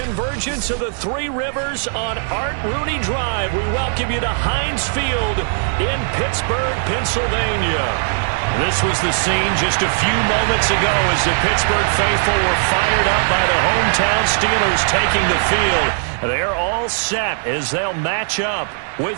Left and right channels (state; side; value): silent; left; 59 dB below the other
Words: of the Three Rivers on Art Rooney Drive. We welcome you to Heinz Field in Pittsburgh, Pennsylvania. This was the scene just a few moments ago as the Pittsburgh faithful were fired up by the hometown Steelers taking the field. They're all set as they'll match up